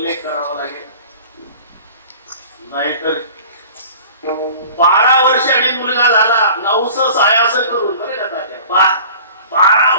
करावा लागेल. नाहीतर 12 वर्षांनी मुलगा झाला, 900 सायास करून बरे का तात्या, 12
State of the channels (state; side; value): inverted; both; correlation -0.43